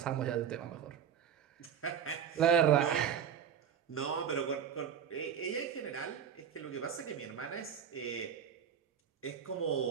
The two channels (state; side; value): quieter; left; 8.3 dB